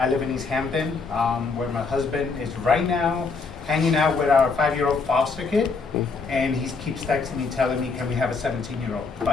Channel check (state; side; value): quieter; right; 4.5 dB